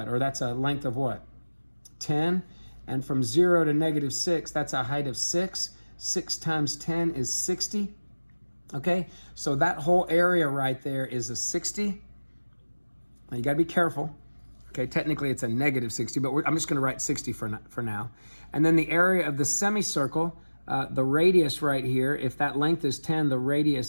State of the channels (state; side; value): inverted; both; correlation -1.00